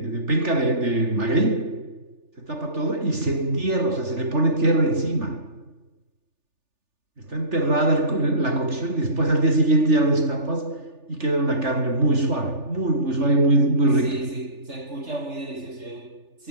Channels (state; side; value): late; left; 3.4 ms